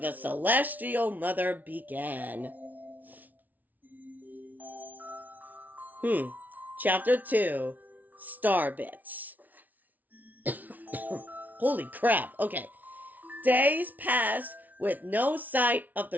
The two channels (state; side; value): late; left; 0.078 ms